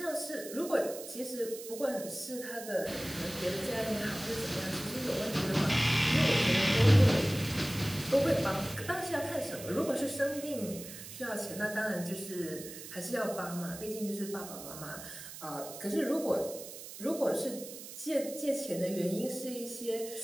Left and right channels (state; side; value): noise; right; hiss, 12 dB below the sound